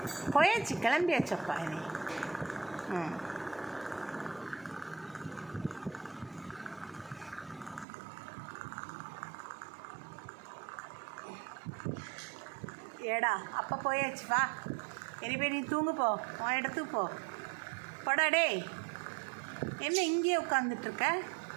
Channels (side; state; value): left; drops out; at 7.9 s